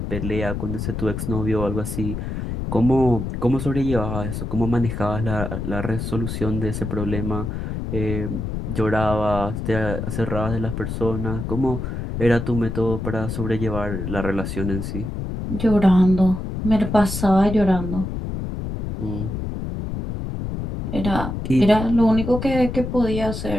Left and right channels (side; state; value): left; noise; rumble, 4 dB below the sound